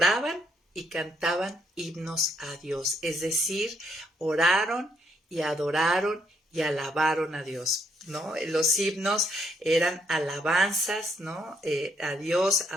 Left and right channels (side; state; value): both; normal; correlation 0.73